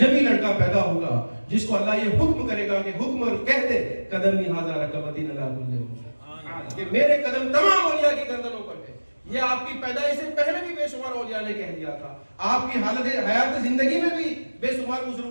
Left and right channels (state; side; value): inverted; both; correlation -1.00